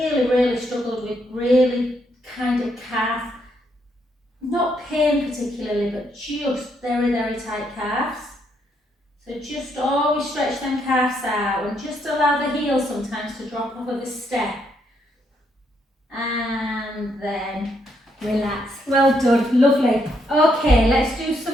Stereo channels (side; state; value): both; normal; correlation 0.75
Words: struggled with really kind of calf, not pain particularly, but just very tight calves. So just always stretch them calves out and just allow the heel sometimes to drop off of a step. And then relax. Well done, lovely. Okay, let's do